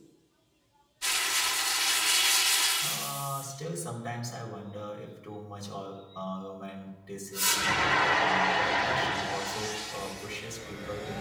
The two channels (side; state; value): both; identical; correlation 1.00